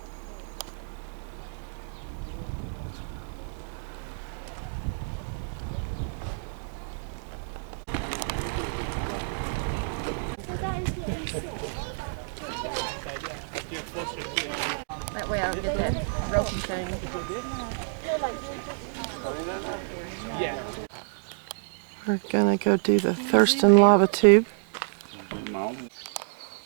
That way I'll get that ropey thing. Yeah. We're gonna go do the Thurston lava tube.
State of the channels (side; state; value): left; silent; digital silence